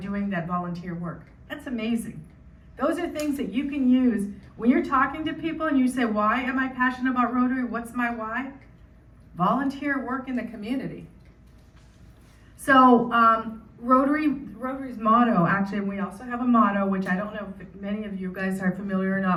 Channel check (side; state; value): both; identical; correlation 1.00